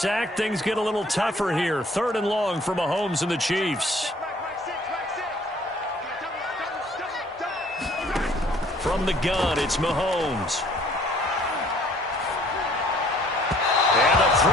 things get a little tougher here. 3rd and long for Mahomes and the Chiefs. From the gun, it's Mahomes. And the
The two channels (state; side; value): normal; both; correlation 0.58